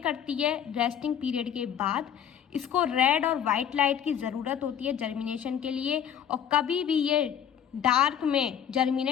करती है रेस्टिंग पीरियड के बाद। इसको रेड और वाइट लाइट की ज़रूरत होती है जर्मिनेशन के लिए, और कभी भी ये डार्क में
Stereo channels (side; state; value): right; quieter; 9.1 dB